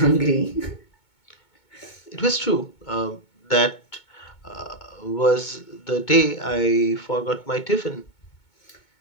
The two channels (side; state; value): right; late; 2.2 ms